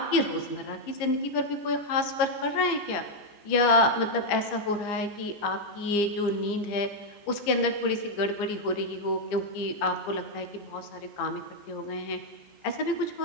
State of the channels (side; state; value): right; late; 15 ms